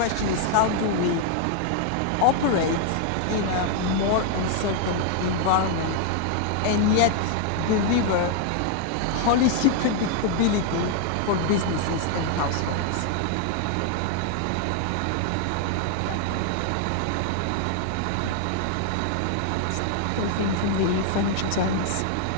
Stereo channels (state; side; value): different; both; correlation 0.00